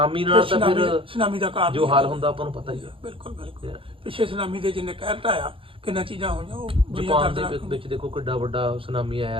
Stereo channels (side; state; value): left; late; 0.26 ms